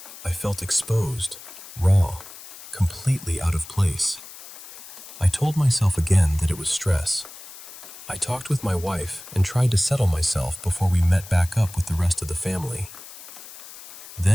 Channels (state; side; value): noise; left; hiss, 15 dB below the sound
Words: I felt exposed, raw, completely out of place. I told myself again that it was stress. I talked with my wife and tried to settle myself before we met back up with the rest of the family.